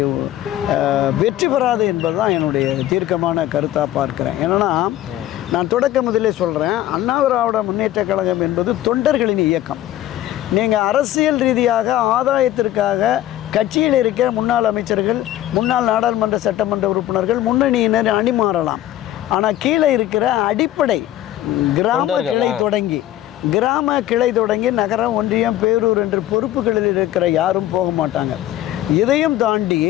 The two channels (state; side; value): quieter; right; 13.5 dB